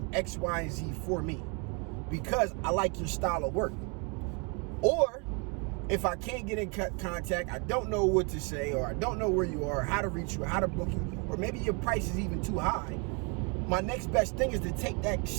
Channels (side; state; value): left; quieter; 33.8 dB